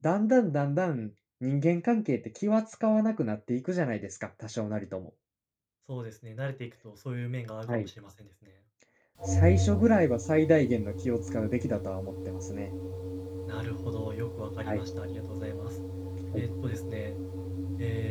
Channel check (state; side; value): identical; both; correlation 1.00